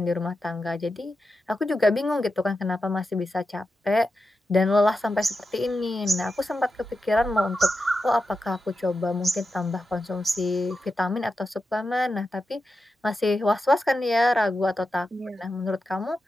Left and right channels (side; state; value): both; normal; correlation 0.90